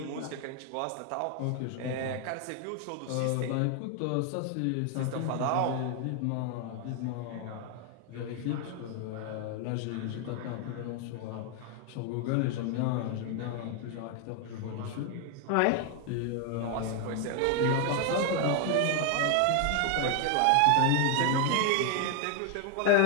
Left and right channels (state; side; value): different; both; correlation 0.00